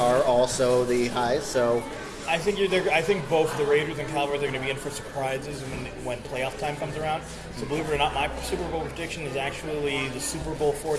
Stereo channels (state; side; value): identical; both; correlation 1.00